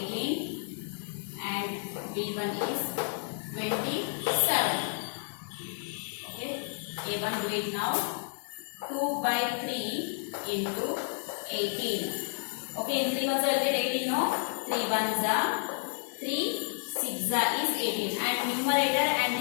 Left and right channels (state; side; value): silent; right; digital silence